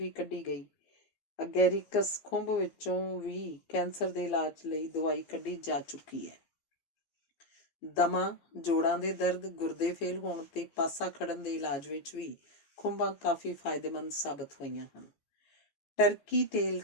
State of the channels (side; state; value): right; late; 14 ms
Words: ਕੱਢੀ ਗਈ। ਅਗੈਰਿਕਸ ਖੁੰਬ ਵਿੱਚੋਂ ਵੀ ਕੈਂਸਰ ਦੇ ਇਲਾਜ ਲਈ ਦਵਾਈ ਕੱਢੀ ਜਾ ਚੁੱਕੀ ਹੈ। ਦਮਾ, ਜੋੜਾਂ ਦੇ ਦਰਦ, ਗੁਰਦੇ ਫੇਲ ਹੋਣ ਤੇ ਪਾਸਾ ਖੜਨ ਦੇ ਇਲਾਜ ਵਿੱਚ ਵੀ ਖੁੰਬਾਂ ਕਾਫੀ ਫਾਇਦੇਮੰਦ ਸਾਬਤ ਹੋਈਆਂ ਹਨ। ਟਰਕੀ ਟੇਲ